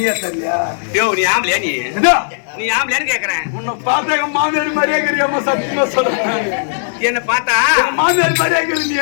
சரியா யோ நீ ஆம்பளையா நீ இதோ நீ ஆம்பளையான்னு கேக்குறேன். உன்னை பார்த்தா எங்க மாமியார் மாதிரியே இருக்கிறியம்மா சத்தியமா சொல்றேன் என்ன பார்த்தா எங்க மாமியார் மாதிரியே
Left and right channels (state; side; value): silent; right; digital silence